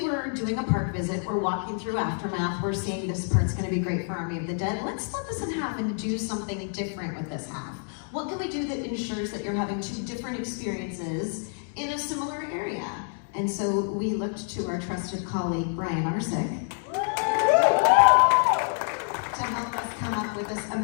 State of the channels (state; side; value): silent; right; 60 dB below the other